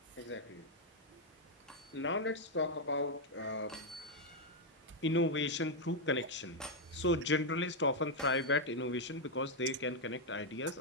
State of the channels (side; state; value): both; normal; correlation 0.00